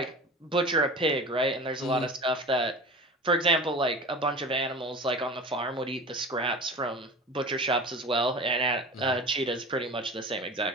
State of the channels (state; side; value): normal; both; correlation 0.35